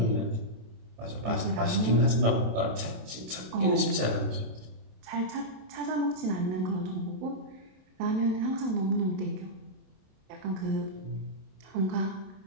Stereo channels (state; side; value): late; left; 27 ms